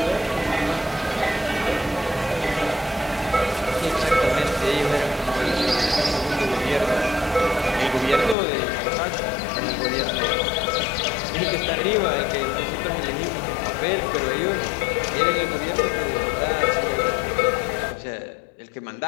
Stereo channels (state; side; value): drops out; right; at 8.3 s